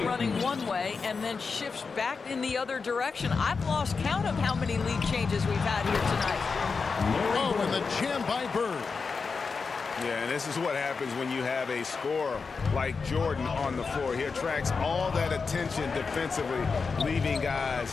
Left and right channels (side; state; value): right; quieter; 4.9 dB